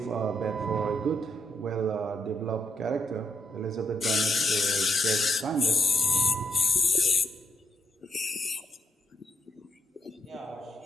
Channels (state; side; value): normal; both; correlation 0.79